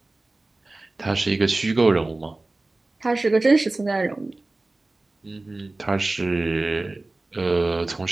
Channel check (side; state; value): left; quieter; 3.0 dB